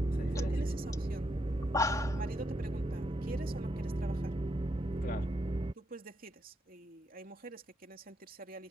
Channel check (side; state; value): both; normal; correlation 0.80